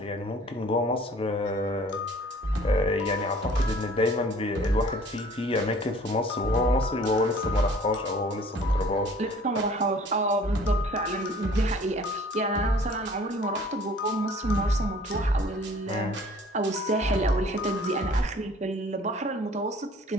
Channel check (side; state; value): both; normal; correlation 0.52